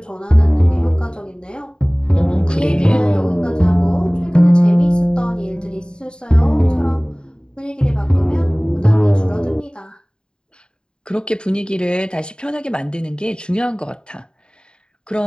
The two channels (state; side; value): late; right; 0.050 ms